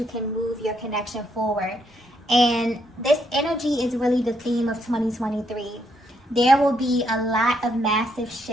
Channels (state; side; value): normal; both; correlation 0.75